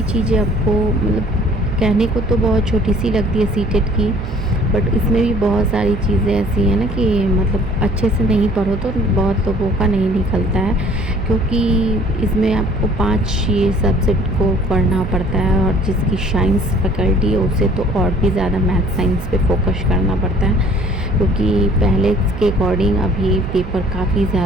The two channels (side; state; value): right; noise; hum, 11 dB below the sound